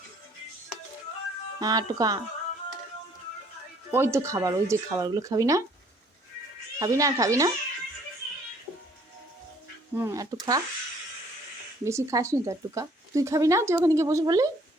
হ্যাঁ, একটু খা। ওই তো খাবার, ওই যে খাবারগুলো খাবি না? খাবি না, খাবি না? একটু খা। বেশি খাস নি তো, একটু খা। তুই খাবি না? তুই ওখানে গিয়ে বসে পড়লি,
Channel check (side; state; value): both; normal; correlation 0.60